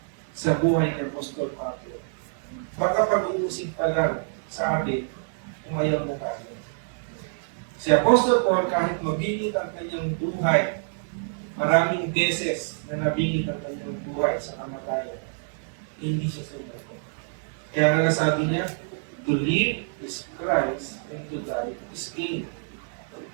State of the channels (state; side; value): silent; left; 60 dB below the other